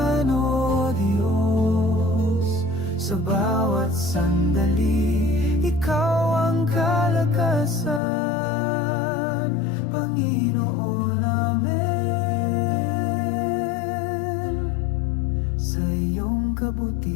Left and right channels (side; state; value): right; drops out; at 8.0 s